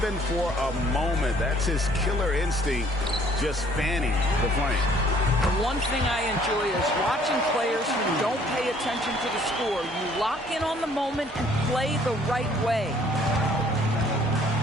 for a moment. That's his killer instinct, just fanning the flame. One thing I enjoy is watching players who don't pay attention to the score. You lock in on the moment and play the right way.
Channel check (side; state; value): both; normal; correlation 0.59